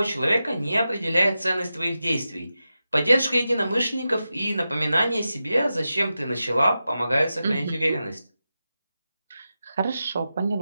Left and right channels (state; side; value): inverted; both; correlation -0.91